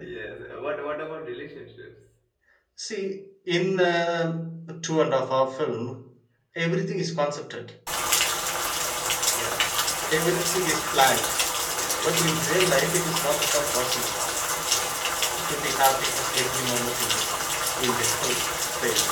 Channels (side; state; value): both; identical; correlation 1.00